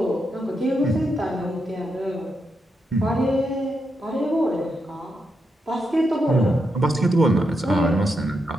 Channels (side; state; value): both; normal; correlation 0.83